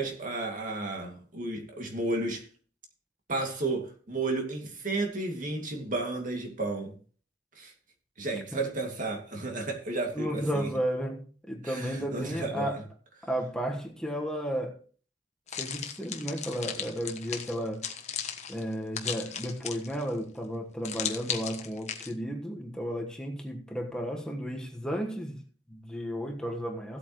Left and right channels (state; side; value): normal; both; correlation 0.52